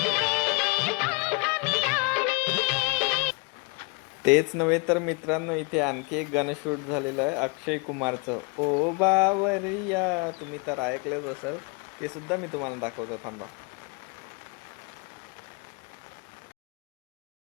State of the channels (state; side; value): quieter; right; 30.9 dB